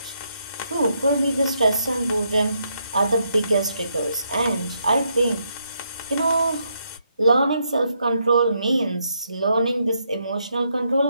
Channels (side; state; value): both; inverted; correlation -0.77